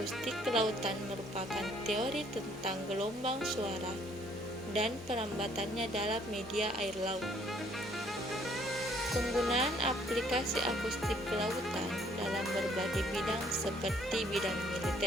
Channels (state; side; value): normal; both; correlation 0.63